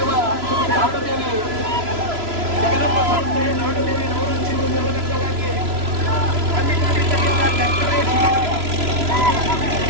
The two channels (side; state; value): left; late; 3.0 ms